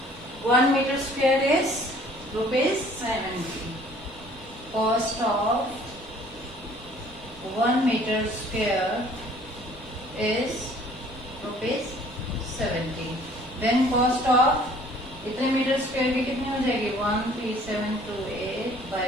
1 meter square is rupees 70. Cost of 1 meter square is rupees 70. Then cost of इतने metre square की कितनी हो जाएगी 13728 by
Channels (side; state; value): both; normal; correlation 0.55